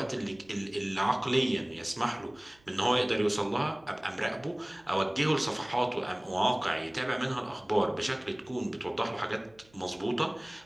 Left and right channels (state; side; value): noise; right; hum, 30 dB below the sound